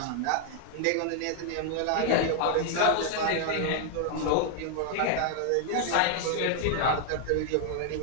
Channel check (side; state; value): both; different; correlation 0.00